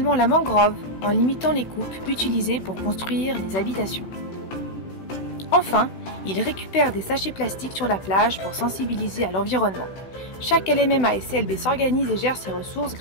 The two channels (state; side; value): late; right; 16 ms